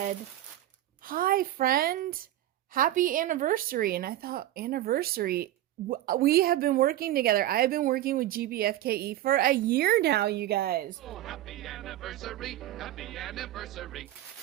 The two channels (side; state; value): left; quieter; 13.9 dB